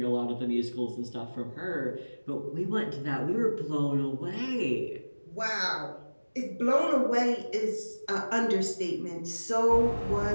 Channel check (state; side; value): inverted; both; correlation -1.00